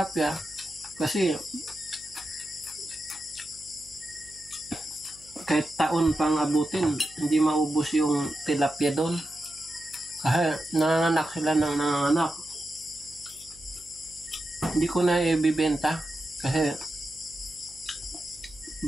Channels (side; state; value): right; noise; hum, 25 dB below the sound